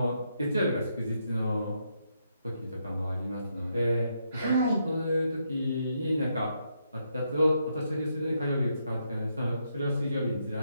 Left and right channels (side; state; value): both; inverted; correlation -0.78